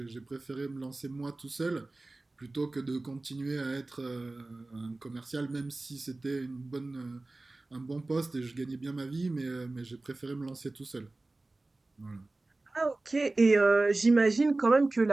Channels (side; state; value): left; quieter; 3.0 dB